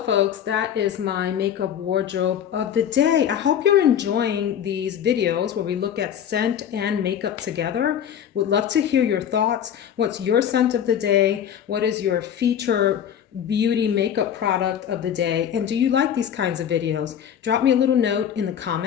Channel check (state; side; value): quieter; right; 9.2 dB